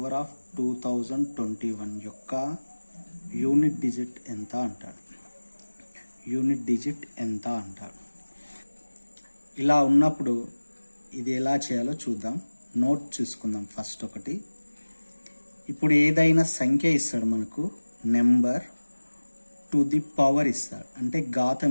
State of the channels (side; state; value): both; inverted; correlation -1.00